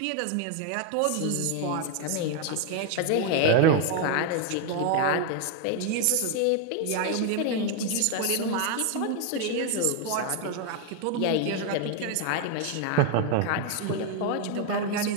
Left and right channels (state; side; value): different; both; correlation 0.00